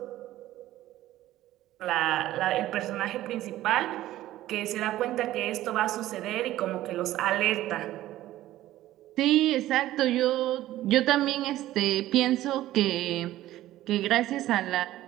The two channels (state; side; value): quieter; left; 14.7 dB